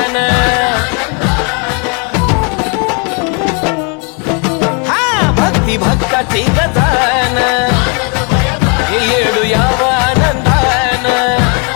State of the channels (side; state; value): right; quieter; 35.9 dB